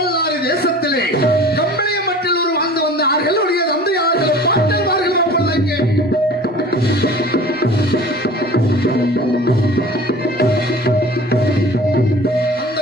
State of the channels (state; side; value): normal; both; correlation 0.42